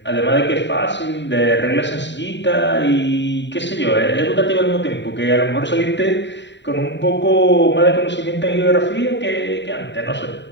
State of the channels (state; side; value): late; right; 0.52 ms